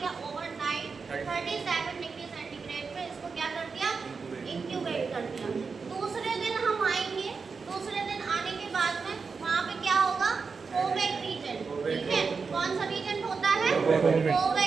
या ओवरनाइट 37 डिग्री सेंटीग्रेड पे इसको क्या कर दिया, इंक्यूबेट कर दिया। दूसरे दिन हम आएंगे, दूसरे दिन आने के बाद में वहाँ पे क्या होगा, कोवेक रीजन। ठीक है, कौन सा रीजन होता है,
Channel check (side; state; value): left; quieter; 5.0 dB